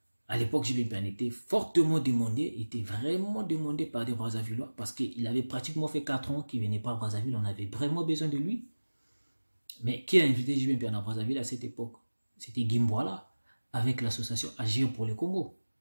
À l'époque, JB Piana était fortement demandé, était vraiment demandé par des Brazzavillois parce qu'il avait pratiquement fait 4 ans qu'il ne venait pas à Brazzaville, on avait vraiment besoin de lui. Mais qui a invité JB Piana à Brazzaville à cette époque? C'était Gimboala avec l'association Agir pour le Congo.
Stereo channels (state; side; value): inverted; both; correlation -1.00